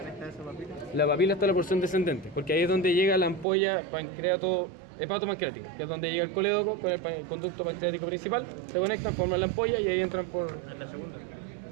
La papila está en la porción descendente, porque ahí es donde llega la ampolla hepatopancreática, que es donde llega el colédoco con el conducto pancreático principal, se conectan, forman la ampolla y ahí entran por...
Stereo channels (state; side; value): drops out; left; at 3.5 s